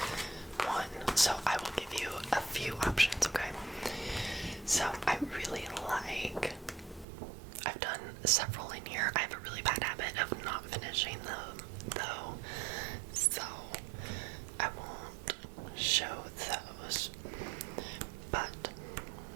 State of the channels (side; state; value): left; drops out; at 7.1 s